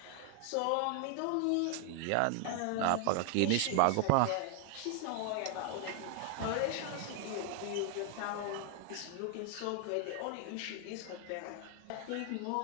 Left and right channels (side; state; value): both; different; correlation 0.00